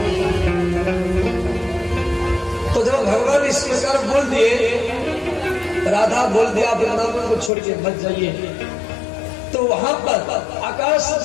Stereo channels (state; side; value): drops out; right; at 7.5 s